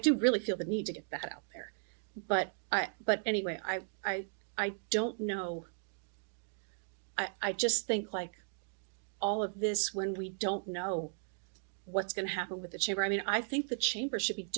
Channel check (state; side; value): silent; left; digital silence